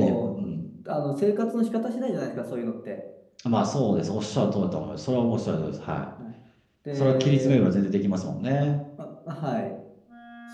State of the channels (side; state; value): both; identical; correlation 1.00